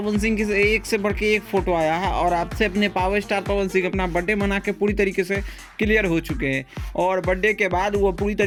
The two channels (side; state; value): both; identical; correlation 1.00